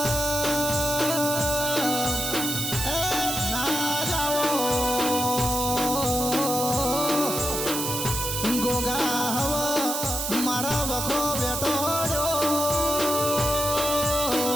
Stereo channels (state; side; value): noise; right; hiss, 2 dB below the sound